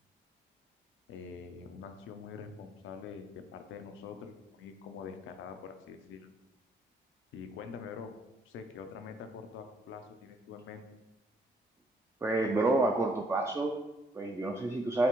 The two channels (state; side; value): normal; both; correlation 0.68